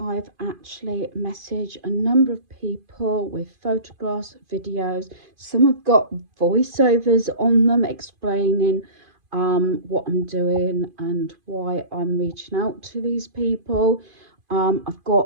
actually messaged a number of people with photographs, videos. Some have got voiceovers on them explaining what I'm doing and why I'm reaching out to these people. I've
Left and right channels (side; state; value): left; late; 2.5 ms